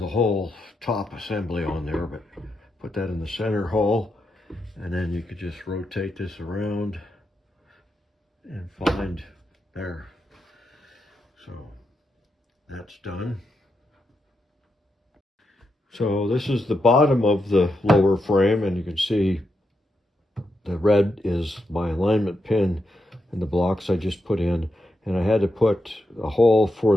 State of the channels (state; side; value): normal; both; correlation 0.84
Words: whole top assembly on there, but put that in the center hole, and then you could just rotate this around and find there. So that's done. So this is the bottom of the lower frame, and you can see the red is my alignment pin and the blocks I just put in. And I had to put a hole